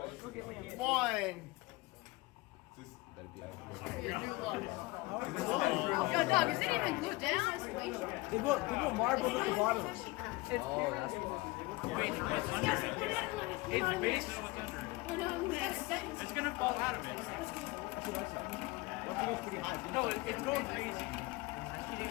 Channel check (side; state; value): right; quieter; 22.2 dB